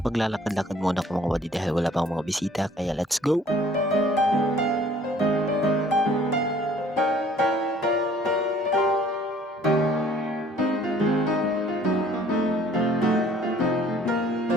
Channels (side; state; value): both; normal; correlation 0.55